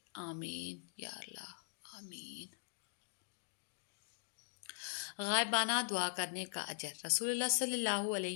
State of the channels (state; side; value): silent; right; digital silence